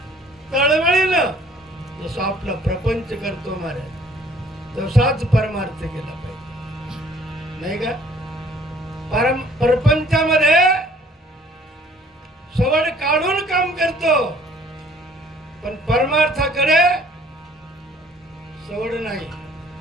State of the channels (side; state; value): both; normal; correlation 0.56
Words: तळमळीनं जसं आपला प्रपंच करतो महाराज, तसाच परमार्थ केला पाहिजे नाही का. प्रपंचामध्ये सवड काढून काम करतो, पण परमार्थाकडे सवड नाही.